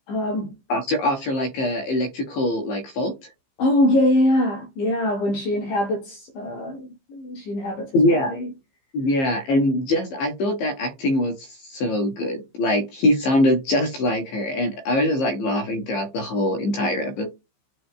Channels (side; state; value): right; late; 15 ms